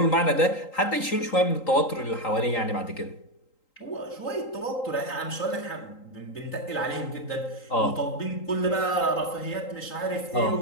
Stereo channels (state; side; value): late; right; 3.8 ms